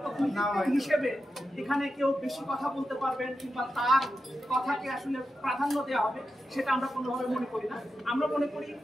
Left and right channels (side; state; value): both; normal; correlation 0.89